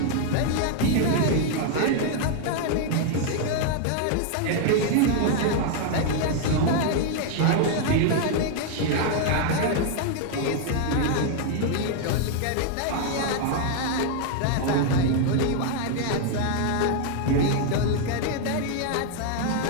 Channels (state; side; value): different; both; correlation 0.00